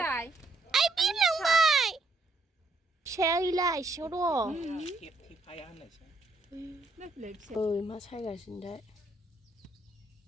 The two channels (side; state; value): left; quieter; 3.1 dB